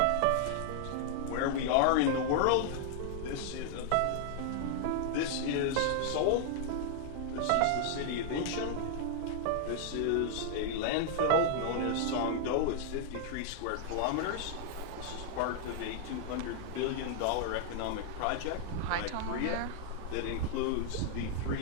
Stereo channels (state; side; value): different; both; correlation -0.01